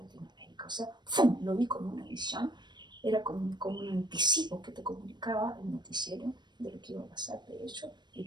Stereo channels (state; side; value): late; left; 0.21 ms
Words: O sea, ¡fum!, lo vi como una visión, era como un anticipo que te comunicaba el noticiero de lo que iba a pasar, de hecho,